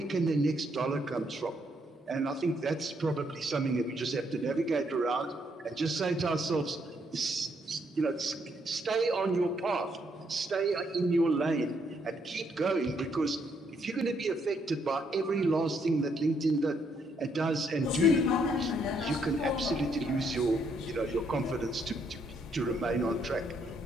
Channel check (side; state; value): both; normal; correlation 0.73